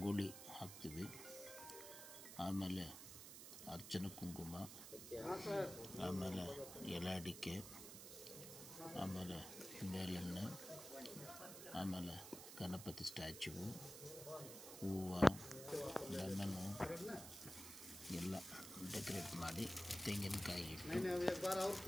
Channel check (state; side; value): noise; right; hiss, 10 dB below the sound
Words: ಹಾಕ್ತೀವಿ, ಆಮೇಲೆ ಅರ್ಚನೆ ಕುಂಕುಮ, ಆಮೇಲೆ ಎಲೆ ಅಡಿಕೆ, ಆಮೇಲೆ ಬೇಳೆಣ್ಣೆ, ಆಮೇಲೆ ಗಣಪತಿ ಸ್ಟ್ಯಾಚ್ಯೂ, ಹೂವು, ಲೆಮನ್ನು ಎಲ್ಲ ಡೆಕೋರೇಟ್ ಮಾಡಿ ತೆಂಗಿನಕಾಯಿ ಇಟ್ಟು